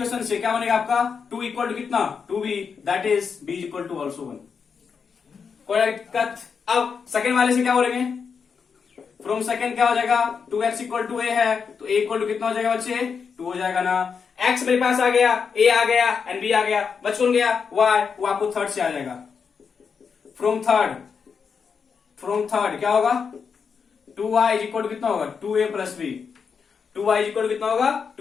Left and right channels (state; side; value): quieter; right; 6.1 dB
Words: से क्या बनेगा आपका, 2 इक्वल टू कितना 2b, that is b equal to also 1, कोई दिक्कत। अब सेकेंड वाले से क्या बोलेंगे, फ्रॉम सेकेंड क्या हो जाएगा, 2x इक्वल टू a है, तो a इक्वल टू कितना हो जाएगा बच्चे 2 हो जाएगा ना। x मेरे पास आ गया, a आ गया एंड b आ गया, बच कौन गया y, वो आपको थर्ड से आ जाएगा। फ्रॉम थर्ड क्या होगा, 2y इज इक्वल टू कितना होगा 2a plus B. 2y is equal to कितना होगा